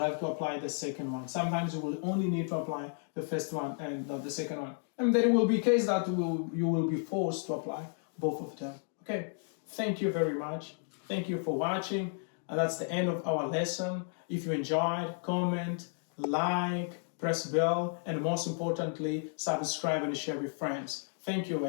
to apply the second one. Sometimes you will only need to apply the first one and not the second one. And there will be case that you will be forced to apply both of them. Okay, thank you very much. Thank you for watching. And that's the end of our lesson. If you enjoyed, comment, like, press bell, and most importantly, subscribe and share with friends. Thank you.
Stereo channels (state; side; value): silent; right; 56 dB below the other